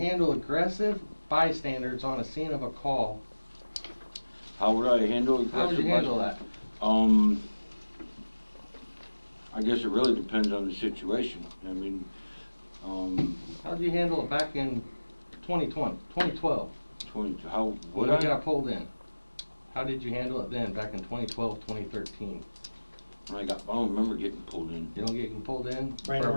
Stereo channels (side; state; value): both; inverted; correlation -1.00